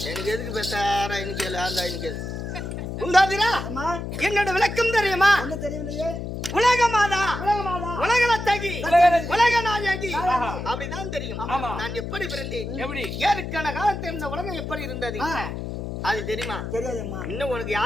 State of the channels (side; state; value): left; noise; hum, 6 dB below the sound